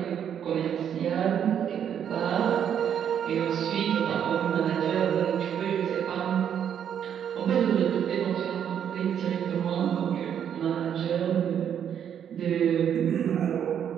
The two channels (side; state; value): left; quieter; 8.9 dB